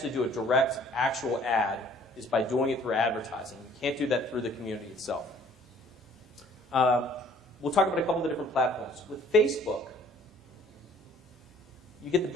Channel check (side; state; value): both; normal; correlation 0.56